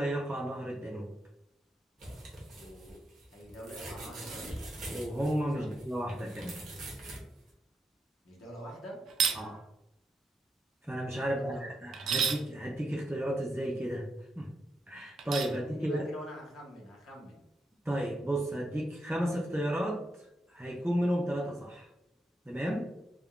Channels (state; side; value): normal; both; correlation 0.83